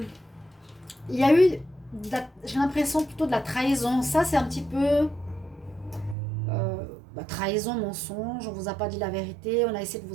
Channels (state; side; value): drops out; left; at 6.2 s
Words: Il y a eu, j'ai l'impression plutôt de la trahison. Ça, c'est un petit peu trahison, mensonge. On ne vous a pas dit la vérité. On a essayé de